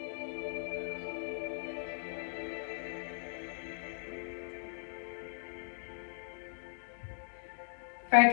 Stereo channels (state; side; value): silent; right; digital silence